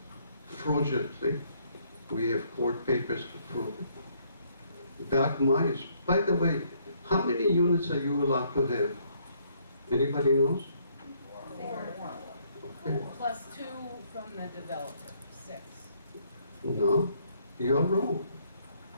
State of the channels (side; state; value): both; inverted; correlation -0.68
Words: fraudulently. We have court papers to prove it. Doc Myers, by the way, how many units are you allowed to have? Anybody knows? Okay. Plus 2 from the developer, 6. No, you're wrong.